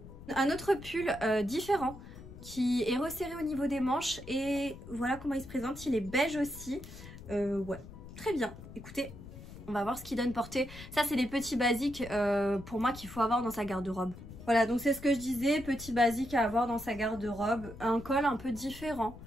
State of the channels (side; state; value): left; noise; rumble, 15 dB below the sound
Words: Un autre pull différent qui est resserré au niveau des manches, et voilà comment il se présente, il est beige aussi. Ouais, très bien. Écoutez, on va voir ce qu'il donne portée. Ça, c'est des petits basiques pour moi qu'il faut avoir dans sa garde-robe. Voilà, donc c'est ce que je disais, petit basique à avoir dans sa garde-robe. Un col un peu différent,